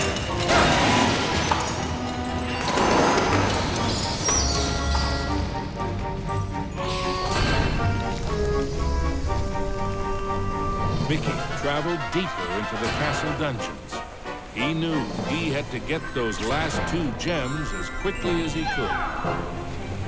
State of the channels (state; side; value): identical; both; correlation 1.00